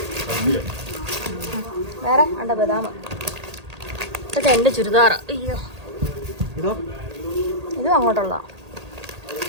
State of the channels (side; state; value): left; late; 1.8 ms